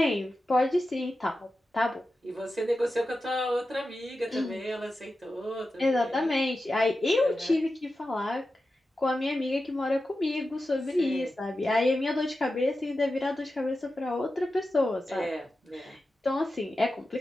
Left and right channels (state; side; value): normal; both; correlation 0.92